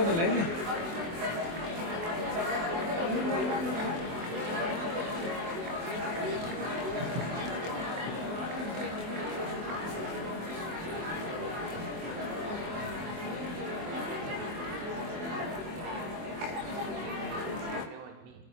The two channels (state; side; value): late; left; 24 ms